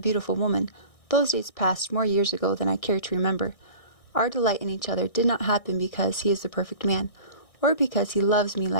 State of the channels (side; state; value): right; late; 1.6 ms